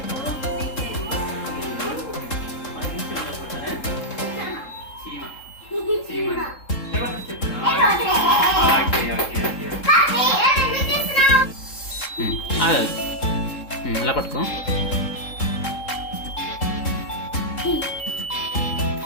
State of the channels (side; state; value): right; late; 3.7 ms